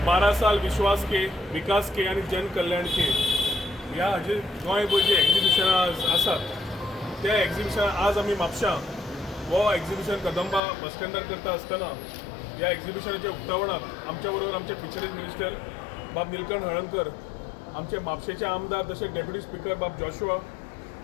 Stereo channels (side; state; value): right; drops out; at 10.6 s